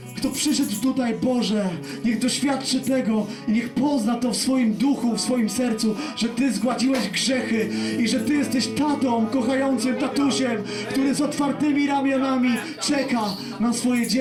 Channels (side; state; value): both; identical; correlation 1.00